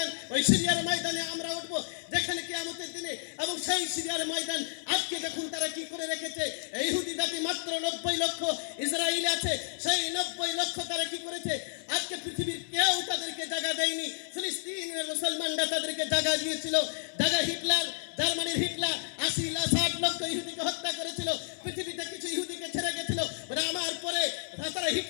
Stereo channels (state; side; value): silent; right; 57 dB below the other